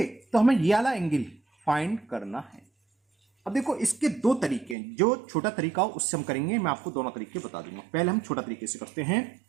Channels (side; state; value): left; drops out; at 4.8 s